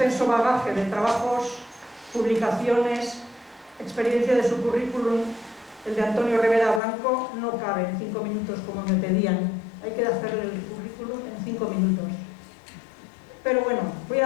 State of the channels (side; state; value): right; drops out; at 6.8 s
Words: bagaje de trabajos, publicaciones, experiencia de su currículum, el de Antonio Rivera Blanco, no cabe en 5 minutos como me pedían. Hay que hacer el currículum en 5 minutos. Pero bueno, voy